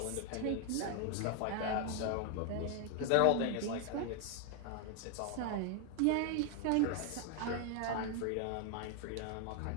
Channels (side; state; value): both; different; correlation 0.00